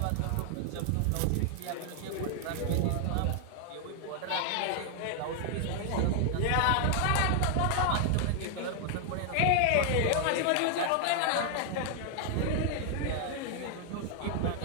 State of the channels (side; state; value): both; different; correlation 0.00